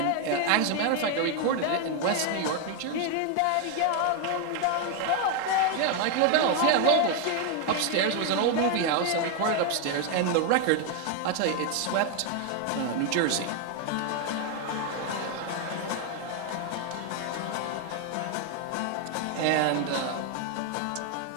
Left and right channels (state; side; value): different; both; correlation 0.01